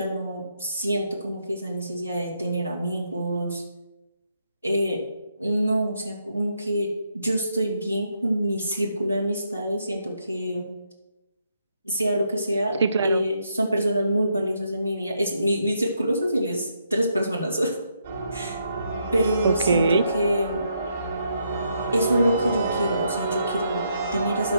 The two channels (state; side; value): inverted; both; correlation -0.77